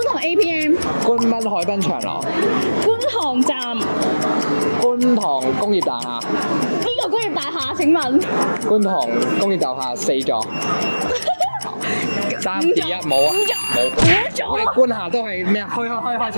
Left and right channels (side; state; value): both; inverted; correlation -1.00